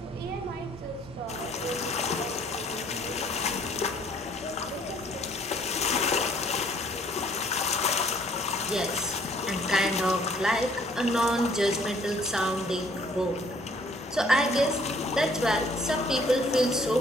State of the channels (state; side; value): normal; both; correlation 0.60